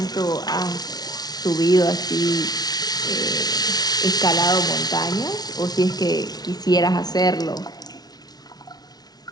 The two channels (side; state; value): right; late; 0.19 ms